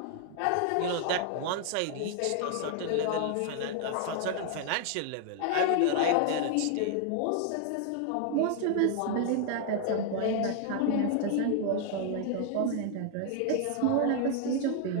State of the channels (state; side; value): different; both; correlation 0.00